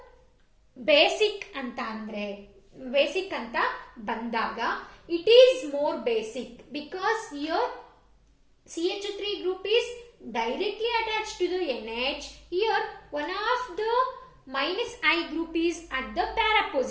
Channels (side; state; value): both; identical; correlation 1.00